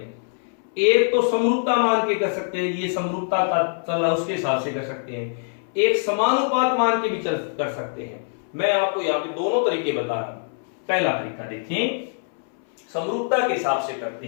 एक तो समरूपता मान के कर सकते हैं, ये समरूपता का चला उसके हिसाब से कर सकते हैं, एक समानुपात मान के भी कर सकते हैं। मैं आपको यहाँ पे दोनों तरीके बता रहा हूं। पहला तरीका देखिए, समरूपता के हिसाब से करते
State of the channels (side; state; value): right; silent; 62 dB below the other